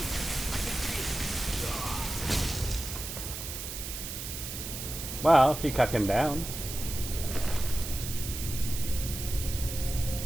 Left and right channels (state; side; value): noise; right; hiss, 7 dB below the sound